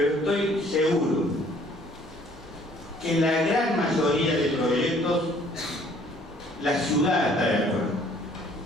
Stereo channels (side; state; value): both; normal; correlation 0.58